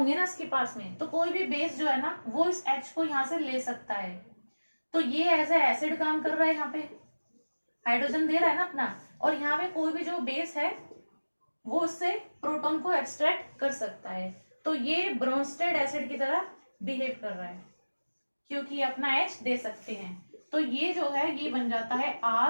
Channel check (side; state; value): both; inverted; correlation -1.00